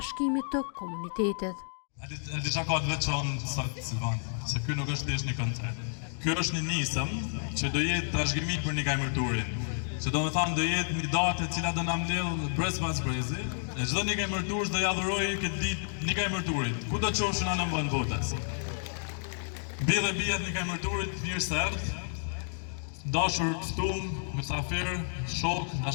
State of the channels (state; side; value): silent; right; digital silence